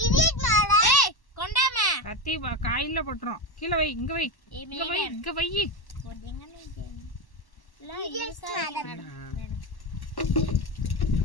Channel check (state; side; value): late; right; 1.1 ms